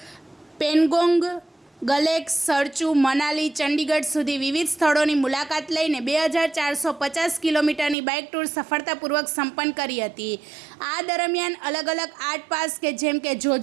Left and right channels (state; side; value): drops out; left; at 8.0 s